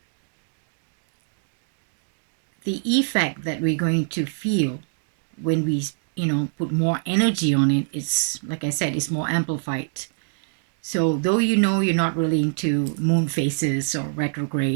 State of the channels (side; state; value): left; silent; digital silence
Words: the effect that we're going to feel when we, you know, put more energy on it, it's, like I said, it's more amplified. So though, you know, you're not really into moon phases or